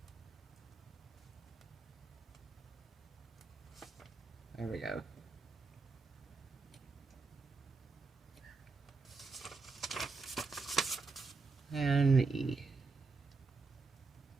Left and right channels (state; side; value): quieter; left; 4.3 dB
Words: There we go. And E.